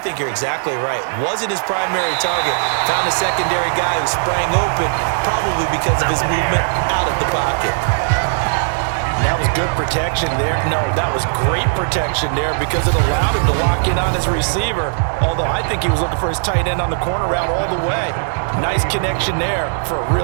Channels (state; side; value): silent; left; 67 dB below the other